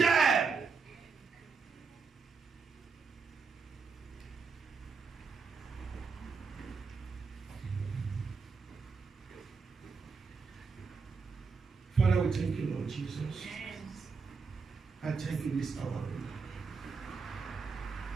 Father, we thank you, Lord Jesus. Yes. I thank you this hour.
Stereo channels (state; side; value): quieter; left; 5.0 dB